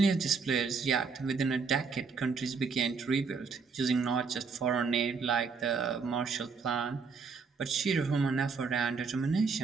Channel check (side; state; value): left; quieter; 5.1 dB